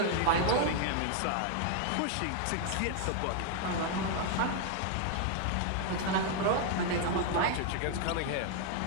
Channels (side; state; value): both; different; correlation 0.00